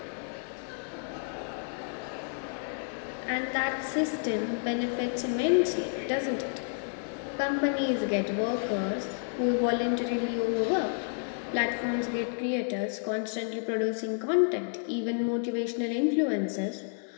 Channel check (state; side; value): silent; right; 58 dB below the other